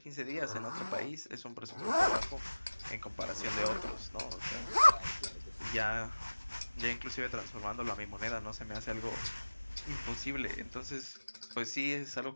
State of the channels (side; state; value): both; inverted; correlation -1.00